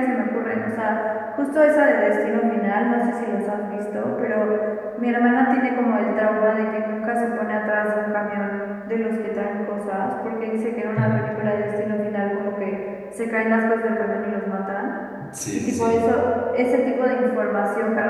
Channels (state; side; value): identical; both; correlation 1.00